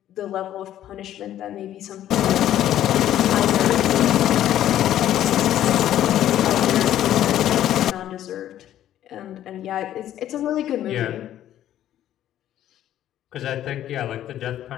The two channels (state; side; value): quieter; right; 12.0 dB